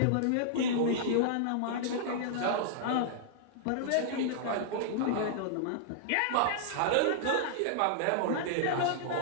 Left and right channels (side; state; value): both; different; correlation -0.01